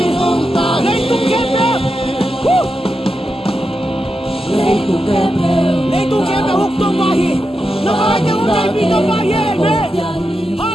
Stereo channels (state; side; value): normal; both; correlation 0.88